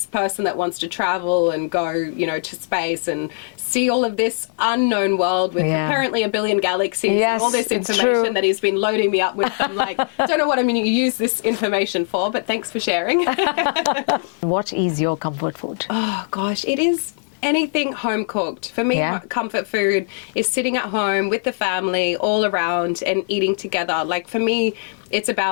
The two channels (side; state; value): right; silent; digital silence